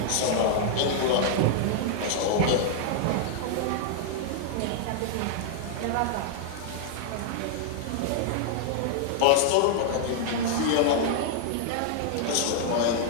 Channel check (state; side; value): different; both; correlation -0.01